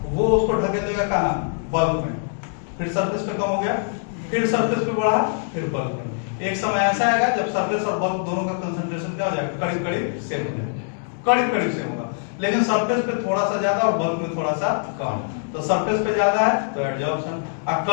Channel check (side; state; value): right; silent; 60 dB below the other